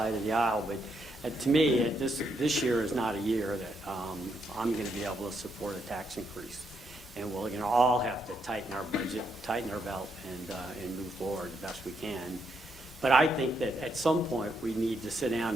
of the aisle, but to me, this year is not a year that I'm going to be able to support a tax increase. And we're going to all have to tighten our budget, tighten our belt, and move forward the best we can. But I think that at some point, we need to sit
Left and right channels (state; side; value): normal; both; correlation 0.78